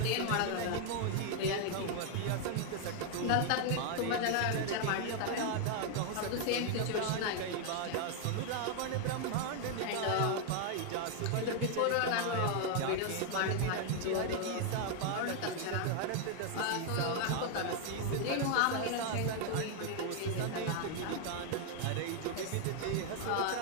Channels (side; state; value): both; different; correlation 0.00